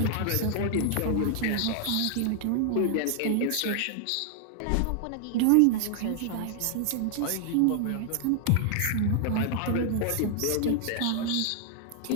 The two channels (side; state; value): both; different; correlation 0.00